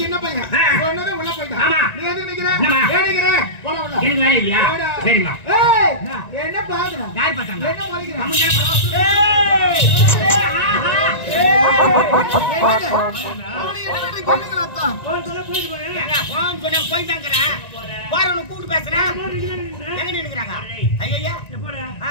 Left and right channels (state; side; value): late; right; 1.9 ms